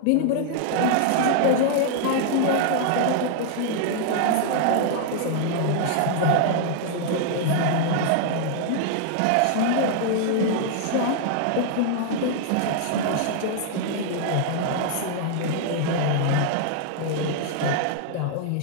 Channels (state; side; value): different; both; correlation -0.01